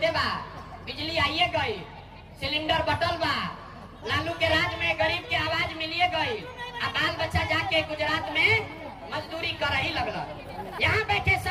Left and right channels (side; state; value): both; identical; correlation 1.00